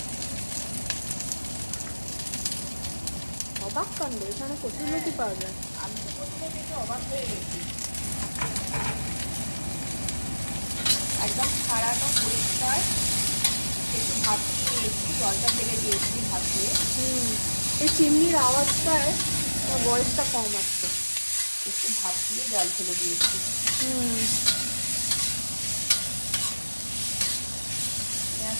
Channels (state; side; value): inverted; both; correlation -1.00